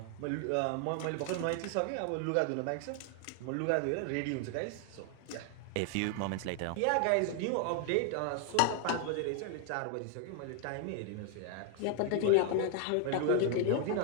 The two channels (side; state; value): both; different; correlation 0.00